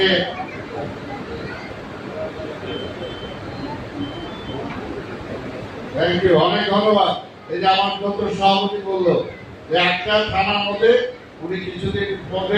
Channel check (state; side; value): identical; both; correlation 1.00